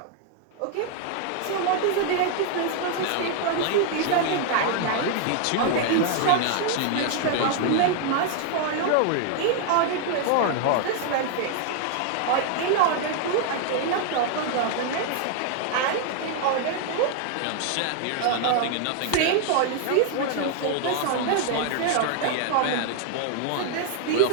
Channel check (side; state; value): both; different; correlation 0.00